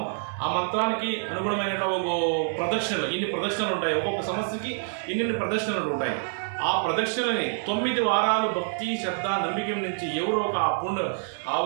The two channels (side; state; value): left; silent; digital silence